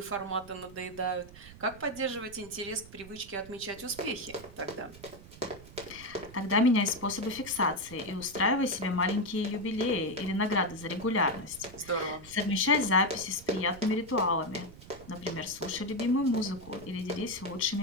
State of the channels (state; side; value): noise; right; rumble, 18 dB below the sound